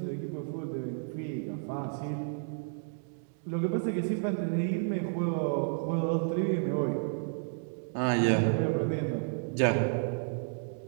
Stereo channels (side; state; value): left; silent; digital silence